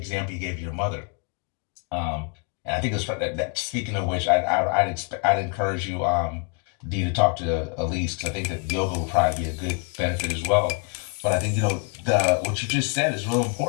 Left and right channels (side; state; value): right; quieter; 36.4 dB